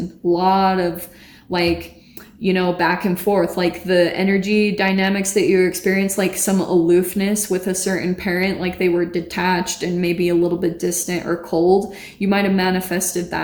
A lot of like, you know, back and forth, like the energy dynamics that you experience, like some aloofness with a certain parent, like they were detached and maybe a little bit distant or cold. You might have manifested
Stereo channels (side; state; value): both; identical; correlation 1.00